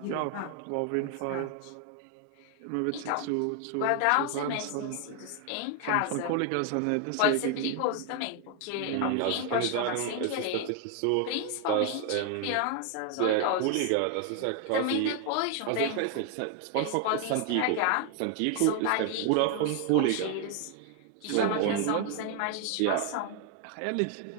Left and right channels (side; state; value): both; different; correlation 0.01